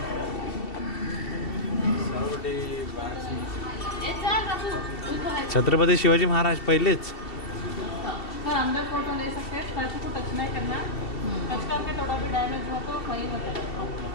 छत्रपती शिवाजी महाराज पहिलेच. सर अंदर फोटो ले सकते हैं, स्टैचू को टच नहीं करना, टच करके थोड़ा भी डैमेज हो तो वही होता है.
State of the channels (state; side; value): late; right; 2.7 ms